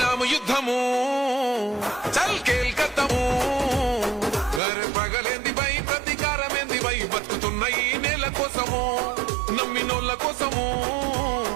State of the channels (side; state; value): left; drops out; at 4.6 s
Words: యుద్ధము చల్ కేల్కత్తము పగలేంది బై ప్రతీకారమేంది బై బతుకుతున్న ఈ నేల కోసము నమ్మినోళ్ళ కోసము